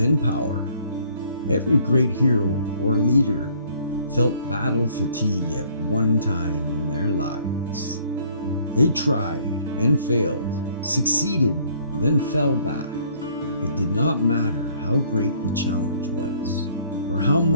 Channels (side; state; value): both; inverted; correlation -0.60